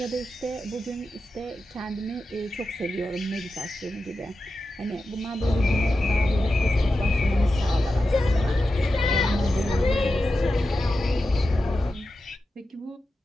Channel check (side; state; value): both; normal; correlation 0.91